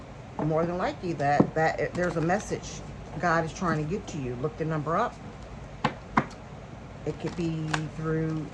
more than likely that there's a message God is trying to get to you. Look the number up. It could be through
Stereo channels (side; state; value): both; identical; correlation 1.00